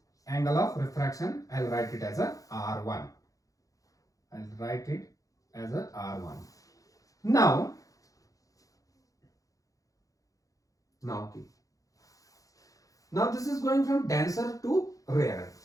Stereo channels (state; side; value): late; right; 0.17 ms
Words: Angle of refraction. I'll write it as a R1. I'll write it as a R1. Now this is going from denser to rarer.